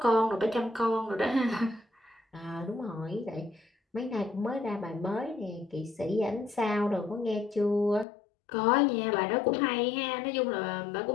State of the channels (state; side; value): drops out; right; at 8.1 s